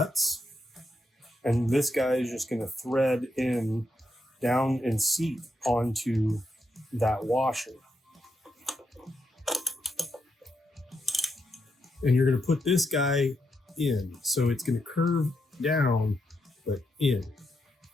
and this guy is just going to thread in down and seat onto that washer. And you're going to put this guy in. So it's going to curve down, but in.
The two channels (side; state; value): both; normal; correlation 0.81